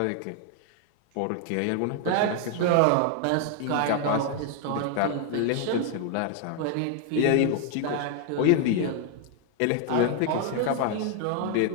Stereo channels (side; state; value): both; different; correlation 0.00